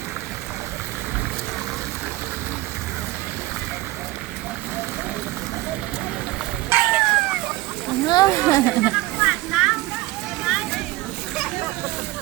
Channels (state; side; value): quieter; left; 19.0 dB